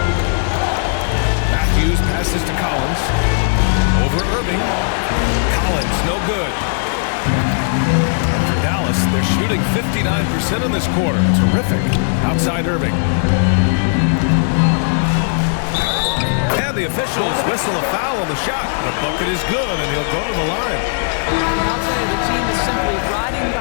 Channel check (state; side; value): silent; right; digital silence